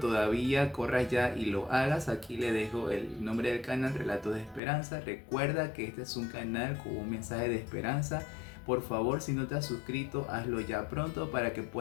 corra ya y lo hagas. Aquí le dejo el nombre del canal, Relatos de Esperanza. Recuerda que este es un canal con un mensaje de esperanza. Por favor, si no te has suscrito, hazlo ya pronto para que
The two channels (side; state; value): right; drops out; at 4.6 s